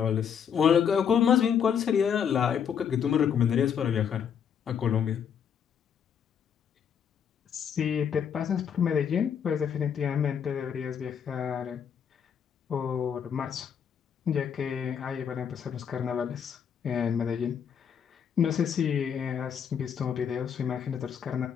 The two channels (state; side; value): quieter; right; 7.8 dB